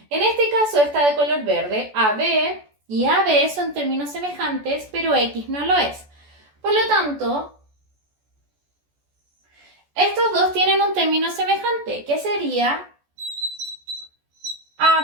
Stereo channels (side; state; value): left; late; 14 ms